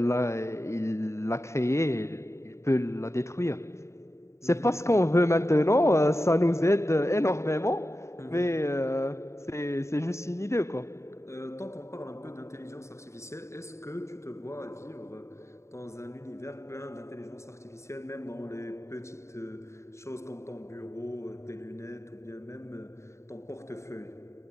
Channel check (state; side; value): late; right; 0.14 ms